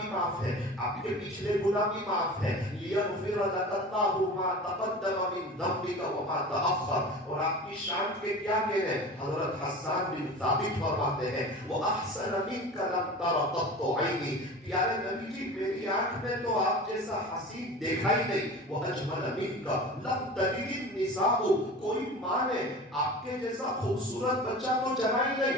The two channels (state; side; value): normal; both; correlation 0.36